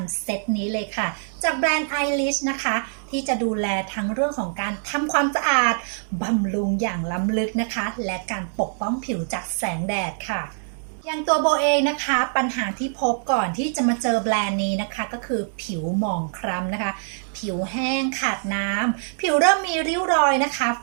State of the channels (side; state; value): left; silent; digital silence